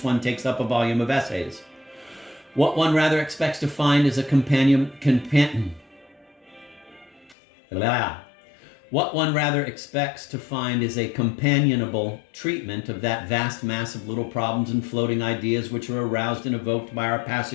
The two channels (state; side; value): drops out; right; at 7.4 s